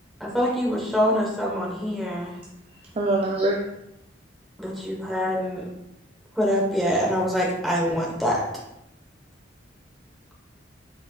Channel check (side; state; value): both; normal; correlation 0.50